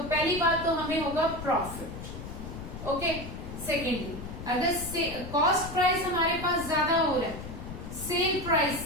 पहली बात तो हमें होगा प्रॉफिट. ओके, सेकेंडली अगर कॉस्ट प्राइस हमारे पास ज्यादा हो रहा है सेल प्राइस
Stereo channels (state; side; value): noise; left; rumble, 10 dB below the sound